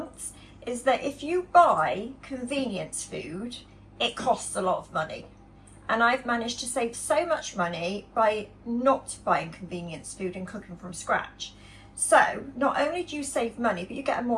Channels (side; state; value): both; identical; correlation 1.00